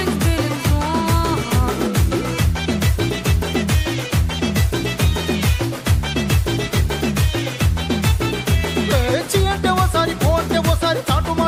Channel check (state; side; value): identical; both; correlation 1.00